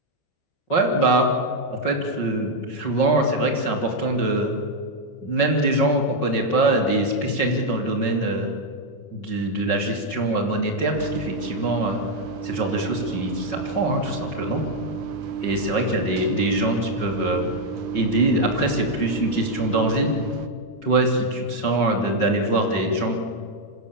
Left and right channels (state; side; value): late; right; 5.4 ms